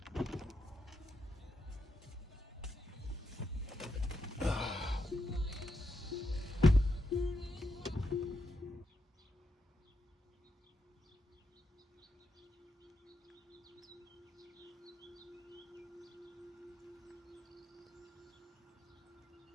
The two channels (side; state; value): both; normal; correlation 0.83